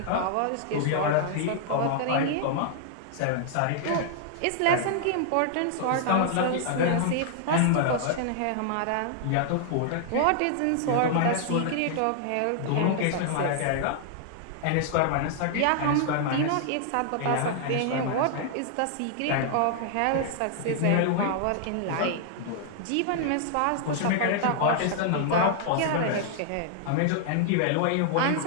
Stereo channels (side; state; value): both; different; correlation -0.01